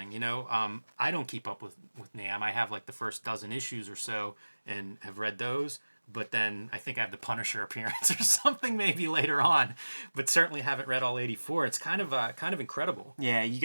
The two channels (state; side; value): inverted; both; correlation -1.00